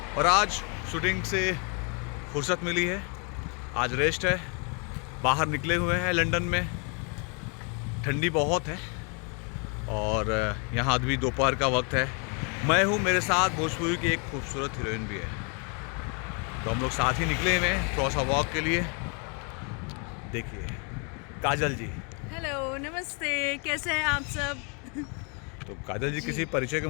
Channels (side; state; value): right; quieter; 36.2 dB